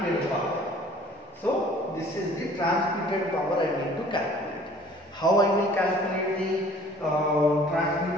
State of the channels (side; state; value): both; normal; correlation 0.52